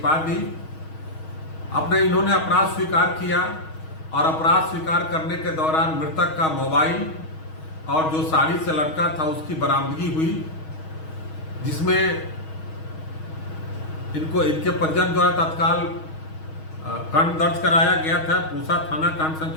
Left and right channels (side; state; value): right; late; 6.3 ms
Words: दी। इन्होंने अपराध स्वीकार किया और अपराध स्वीकार करने के दौरान मृतक का मोबाइल और जो साड़ी से लटका था उसकी बरामदगी हुई, जिसमें इनके परिजन द्वारा तत्काल कांड दर्ज कराया गया था। पूसा थाना कांड